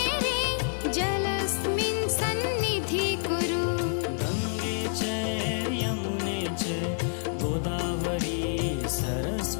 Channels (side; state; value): right; silent; 59 dB below the other